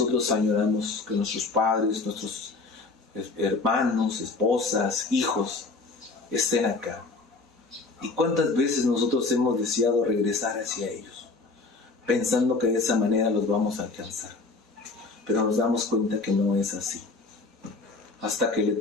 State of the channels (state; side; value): quieter; right; 3.8 dB